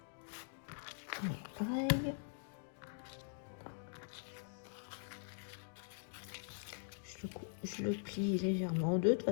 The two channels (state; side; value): silent; right; digital silence